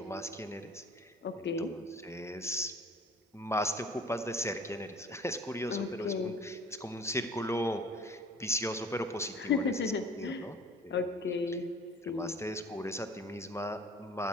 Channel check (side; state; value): both; normal; correlation 0.47